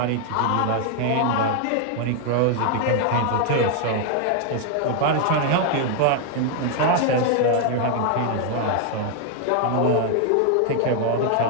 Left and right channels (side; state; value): both; different; correlation 0.00